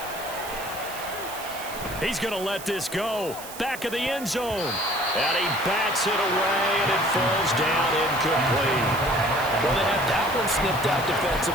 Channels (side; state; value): right; noise; hiss, 13 dB below the sound